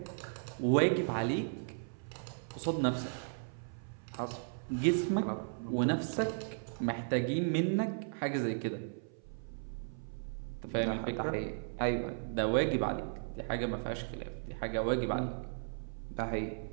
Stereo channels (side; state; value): left; silent; 54 dB below the other